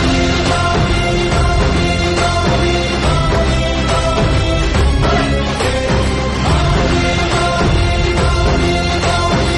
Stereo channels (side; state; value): both; identical; correlation 1.00